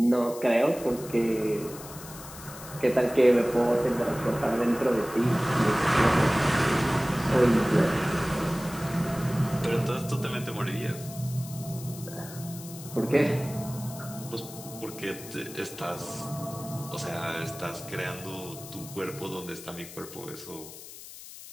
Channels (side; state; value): left; noise; hiss, 15 dB below the sound